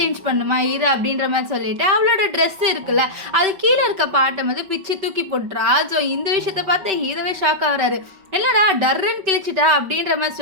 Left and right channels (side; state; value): left; late; 5.2 ms